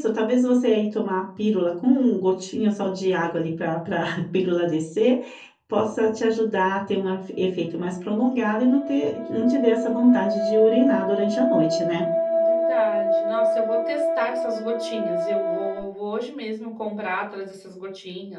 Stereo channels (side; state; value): both; identical; correlation 1.00